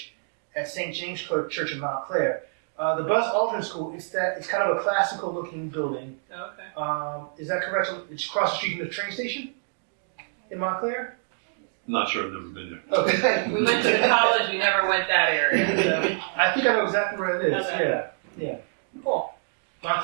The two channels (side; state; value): left; silent; digital silence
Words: at St. James Church in Montclair. The Buzz Aldrin School. It's kind of a classical-looking building. Okay. Is that correct? It's across the street from the train station in Montclair. Not sure, I've never been there. Okay. We went to the college, we never went that area. So. I think I know exactly where it is. Okay. Yeah. Cool.